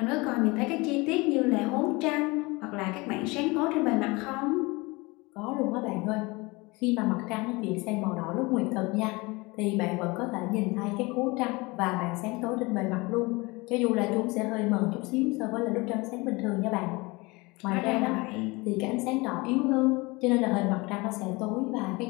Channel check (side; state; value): right; quieter; 24.6 dB